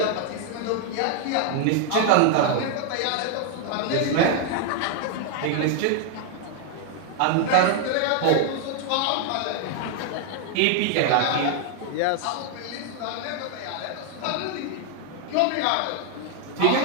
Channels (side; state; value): both; different; correlation 0.00